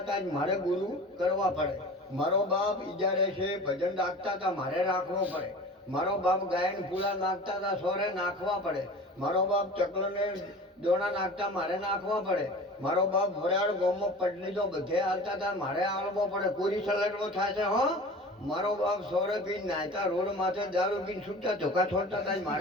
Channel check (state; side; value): normal; both; correlation 0.38